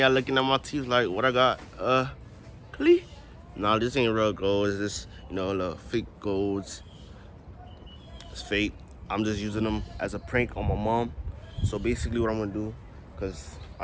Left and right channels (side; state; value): both; identical; correlation 1.00